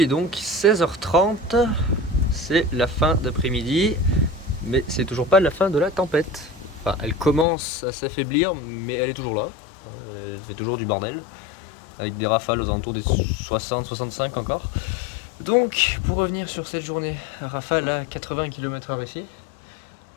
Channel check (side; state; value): right; drops out; at 7.5 s